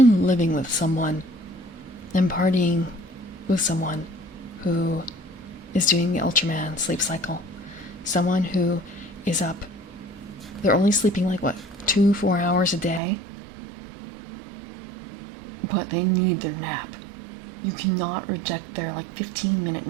living with someone and partying with someone who is doing the Ultraman sleep cycle. Someone who is up, they're only sleeping like, 2-4 hours a day? But they need their nap. You cannot reject their 15-minute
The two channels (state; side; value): drops out; left; at 13.0 s